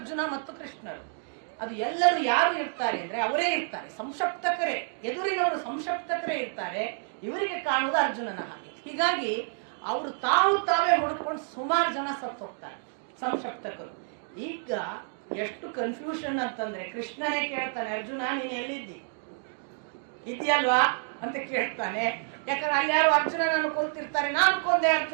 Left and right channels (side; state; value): left; silent; 59 dB below the other